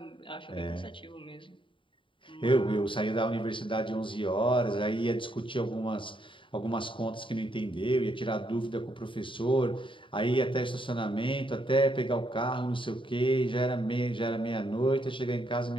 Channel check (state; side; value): late; right; 0.25 ms